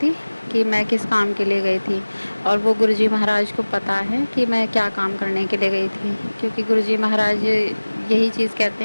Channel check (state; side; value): inverted; both; correlation -1.00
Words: कि मैं किस काम के लिए गई थी, और वो गुरुजी महाराज को पता है कि मैं क्या काम करने के लिए गई थी। क्योंकि गुरुजी महाराज यही चीज़ कहते